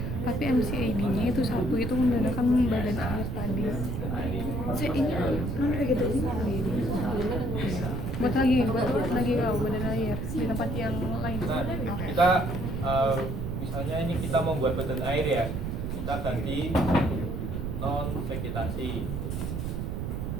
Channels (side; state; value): right; noise; rumble, 3 dB below the sound